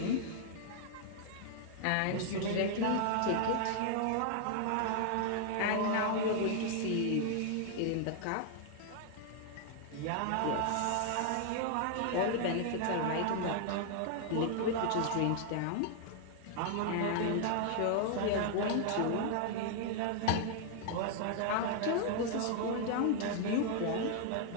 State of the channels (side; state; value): both; different; correlation 0.00